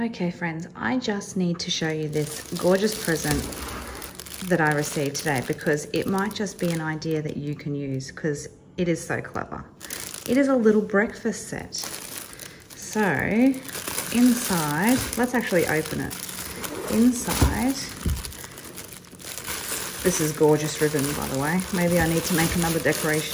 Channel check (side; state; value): both; identical; correlation 1.00